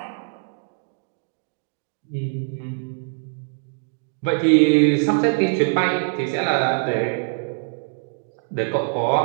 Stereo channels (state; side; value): silent; left; digital silence